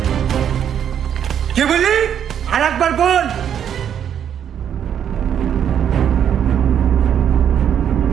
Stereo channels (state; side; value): quieter; left; 9.0 dB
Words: কে বলি? আর একবার বল।